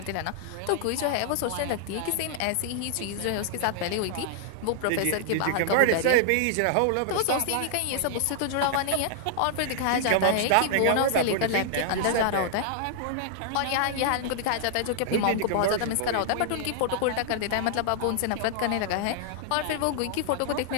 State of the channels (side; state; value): both; different; correlation -0.01